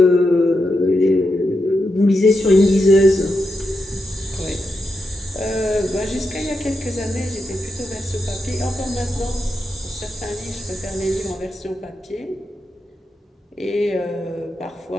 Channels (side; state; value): both; normal; correlation 0.86